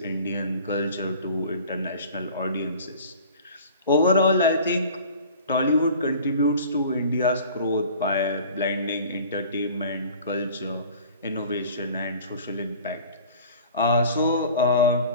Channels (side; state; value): both; inverted; correlation -0.45